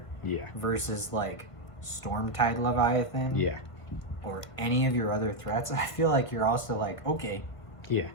versus like Stormtide Leviathan, or any of your other threats, I feel like you're also like, okay,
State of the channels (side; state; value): right; late; 1.7 ms